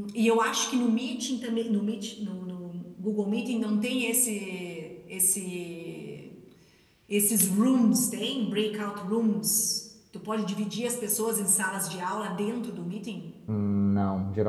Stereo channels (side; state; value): both; identical; correlation 1.00